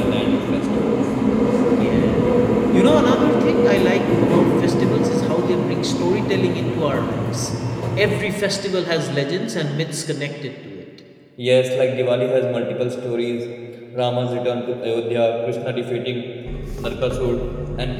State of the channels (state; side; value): identical; both; correlation 1.00